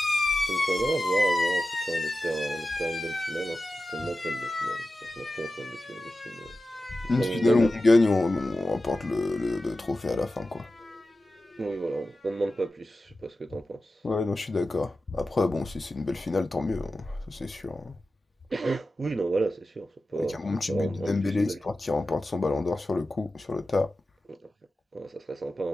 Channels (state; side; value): normal; both; correlation 0.93